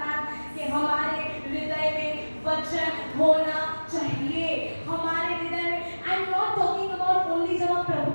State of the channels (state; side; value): inverted; both; correlation -1.00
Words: कि हमारे हृदय में वचन होना चाहिए। हमारे हृदय में, आई am not talking about only जब आप प्रभु